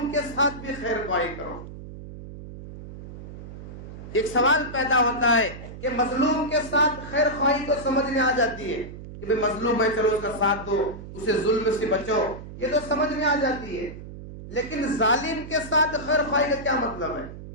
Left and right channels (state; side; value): noise; right; hum, 13 dB below the sound